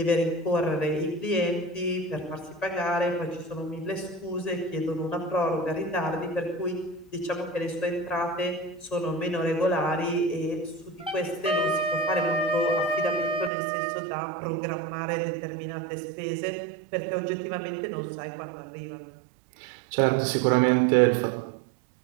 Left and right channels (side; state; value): left; drops out; at 13.5 s